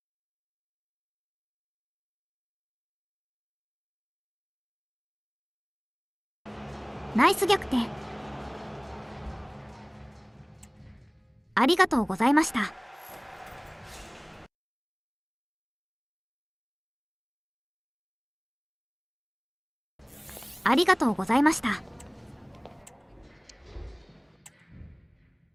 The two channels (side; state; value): both; identical; correlation 1.00